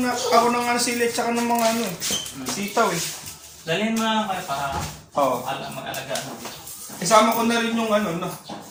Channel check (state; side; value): identical; both; correlation 1.00